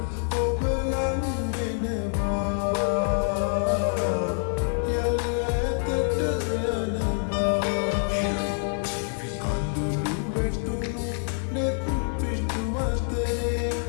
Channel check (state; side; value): silent; right; 58 dB below the other